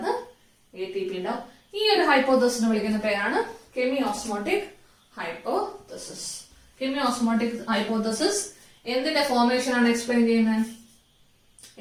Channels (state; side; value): identical; both; correlation 1.00